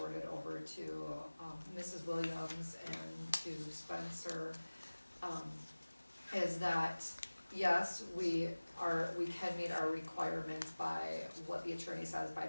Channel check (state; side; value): inverted; both; correlation -1.00